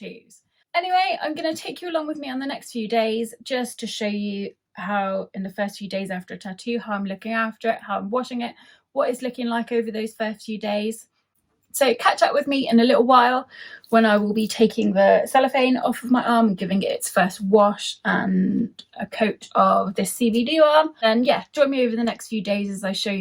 Anyway, I'm going to take you along with me on the next few days just to show you how in the first few days after a tattoo, how I'm looking after it, how I'm washing it, what it's looking like over those first few days. So catch up with me in a little while when I will be taking the cellophane off of my arm and giving it its first wash and a coat of this Cbd Balm. And yeah, join me over the next few days as I show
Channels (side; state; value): both; identical; correlation 1.00